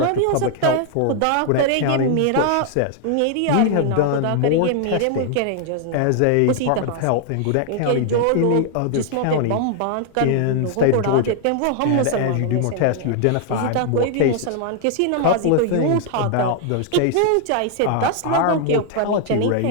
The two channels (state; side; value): different; both; correlation 0.00